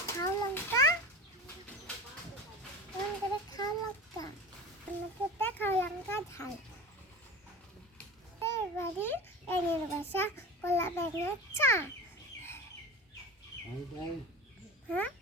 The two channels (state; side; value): normal; both; correlation 0.31